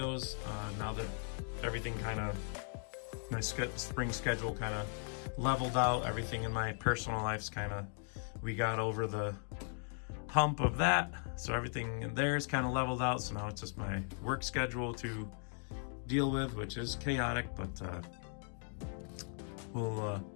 now that everything kind of, my spring schedule kind of leveled out. Everything in my personal life's kind of, we got over the hump of that, so everything in there is kind of leveled out. So now it's just my work schedule to deal with, which is chaotic, but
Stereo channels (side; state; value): right; silent; 52 dB below the other